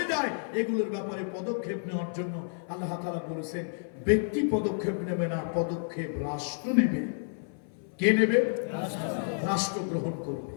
যায় এগুলোর ব্যাপারে পদক্ষেপ নেওয়ার জন্য আল্লাহ তাআলা বলেছেন ব্যক্তি পদক্ষেপ নেবে না পদক্ষেপ রাষ্ট্র নেবে কে নেবে রাষ্ট্র গ্রহণ করবে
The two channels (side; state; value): right; silent; 56 dB below the other